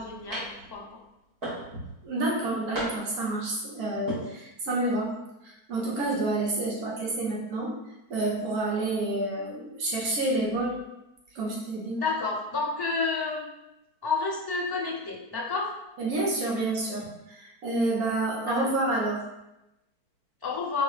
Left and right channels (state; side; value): late; left; 4.5 ms